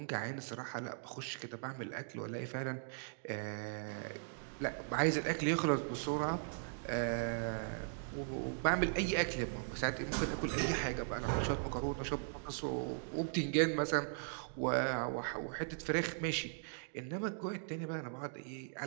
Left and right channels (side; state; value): left; silent; digital silence